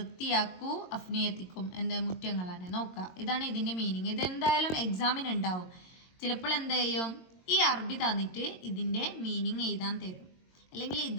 അഫ്നിയത്തിക്കും എന്ത്, മുറ്റങ്ങളാണ്. നോക്കാം, ഇതാണ് ഇതിൻ്റെ മീനിങ്. ഇതെന്തായാലും എക്സാമിന് ഉണ്ടാവും. ചിലപ്പോൾ എന്ത് ചെയ്യും, ഈ അറബി തന്നിട്ട് ഇതിൻ്റെ മീനിങ് എഴുതാൻ തരും, അല്ലെങ്കിൽ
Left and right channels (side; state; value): right; late; 22 ms